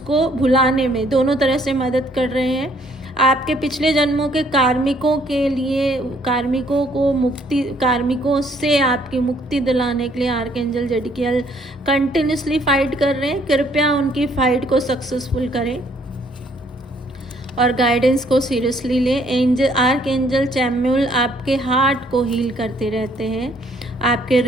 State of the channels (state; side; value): normal; both; correlation 0.65